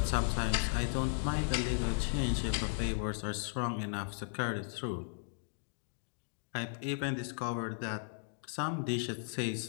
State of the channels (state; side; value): silent; right; digital silence